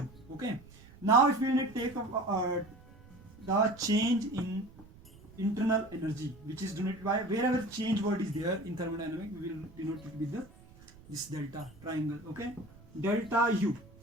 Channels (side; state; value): right; noise; rumble, 22 dB below the sound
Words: Okay. Now if we need to take the change in internal energy, which is denoted by, wherever change word is there in thermodynamics, we will denote it with this delta triangle. Okay, delta U.